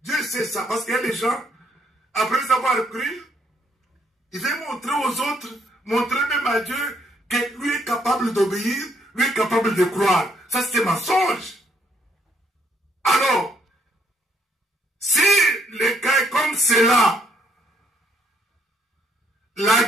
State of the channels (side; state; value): both; normal; correlation 0.70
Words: Dieu sait ça, parce qu'il y a des gens, après avoir cru, ils veulent montrer aux autres, montrer même à Dieu que lui est capable d'obéir, lui est capable de croire. Ça, c'est un mensonge. Alors, si le cas est comme cela, la